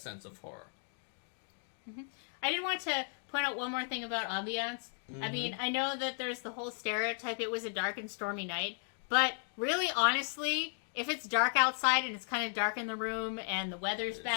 of horror. Mm-hmm. I did want to point out one more thing about Ambiance. Mm-hmm. I mean, I know that there's the whole stereotype it was a dark and stormy night, but really, honestly, if it's dark outside and it's kind of dark in the room and the weather's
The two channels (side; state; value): right; silent; 54 dB below the other